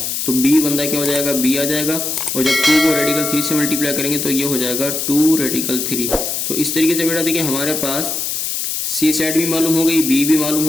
तो b बंदा क्या हो जाएगा, b आ जाएगा, और जब 2 को रेडिकल 3 से मल्टीप्लाई करेंगे तो ये हो जाएगा 2 रेडिकल 3। तो इस तरीके से बेटा देखिए हमारे पास सी साइड भी मालूम हो गई, बी भी मालूम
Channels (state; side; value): noise; left; hiss, 2 dB below the sound